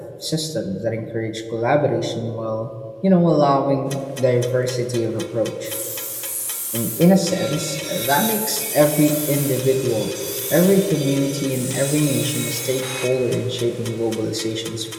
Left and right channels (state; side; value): identical; both; correlation 1.00